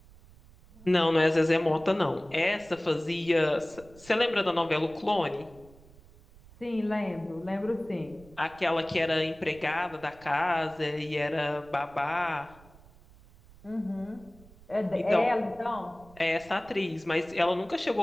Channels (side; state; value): right; noise; rumble, 24 dB below the sound